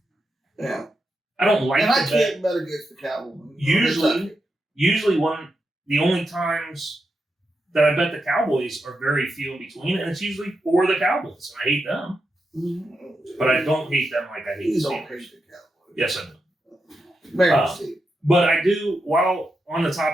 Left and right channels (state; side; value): normal; both; correlation 0.86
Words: Yeah. I don't like and to I can't bet against the Cowboys. Usually the only times that I bet the Cowboys are very few in between, and it's usually for the Cowboys, and I hate them. Mm-hmm. But I don't hate them like I hate the Steelers. Yes, I do. But I do, while on the